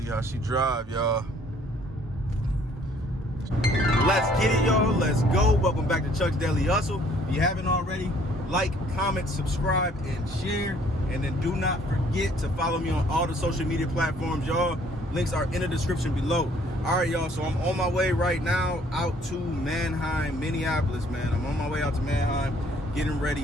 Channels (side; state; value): both; normal; correlation 0.60